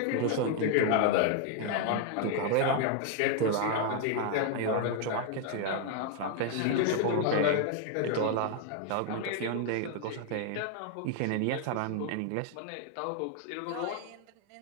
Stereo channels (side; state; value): both; different; correlation 0.00